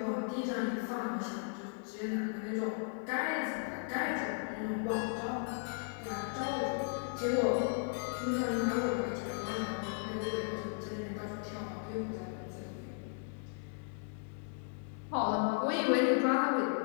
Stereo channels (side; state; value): right; silent; 54 dB below the other